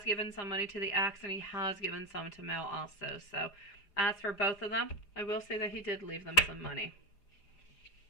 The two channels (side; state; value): right; late; 4.9 ms